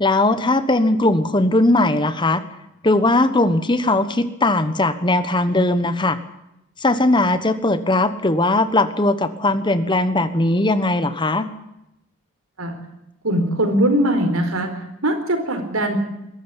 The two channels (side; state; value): both; normal; correlation 0.51